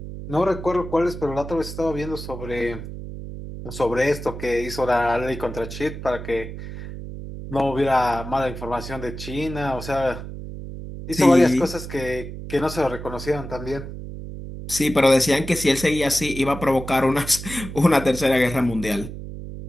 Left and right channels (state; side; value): noise; right; hum, 10 dB below the sound